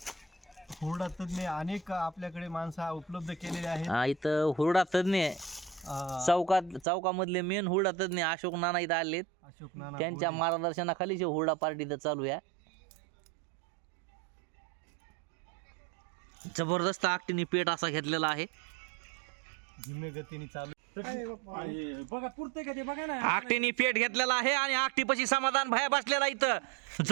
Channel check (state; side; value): drops out; left; at 6.9 s